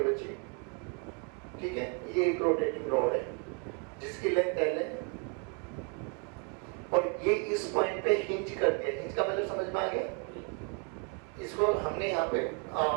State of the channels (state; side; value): quieter; left; 34.3 dB